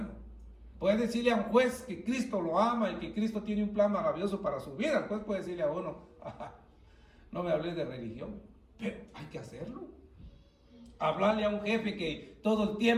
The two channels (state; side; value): identical; both; correlation 1.00